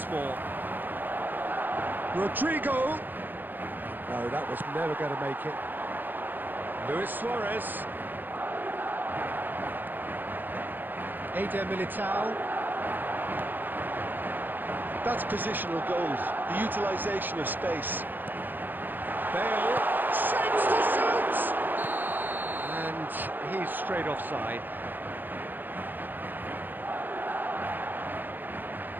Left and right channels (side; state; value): left; late; 0.091 ms